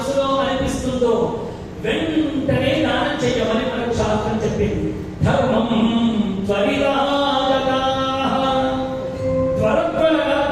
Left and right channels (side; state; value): both; identical; correlation 1.00